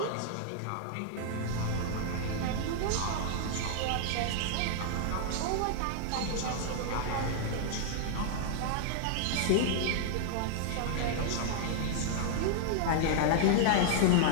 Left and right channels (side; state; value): both; different; correlation -0.01